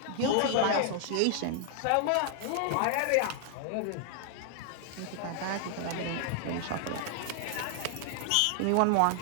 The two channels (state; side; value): different; both; correlation 0.00